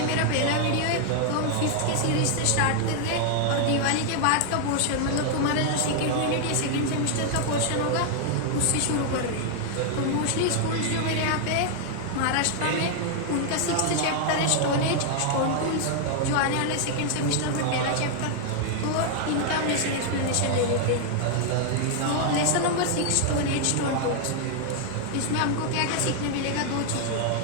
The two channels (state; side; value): different; both; correlation 0.00